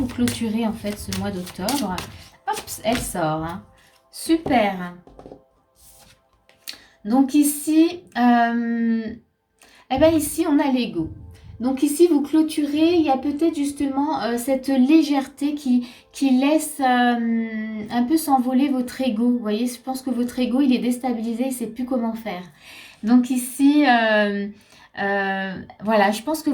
clôturez en fait ce mois d'octobre. Hop, elle sort, hein. Super. Donc ici, eh ben ici on a l'ego. Donc ici vous clôturez, il y a peut-être justement cette légèreté qui laisse un peu s'envoler votre ego. Vous voyez, je pense que votre ego il est déstabilisé, il ne sait plus comment faire. Donc ici, voilà, je pense que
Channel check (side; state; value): both; identical; correlation 1.00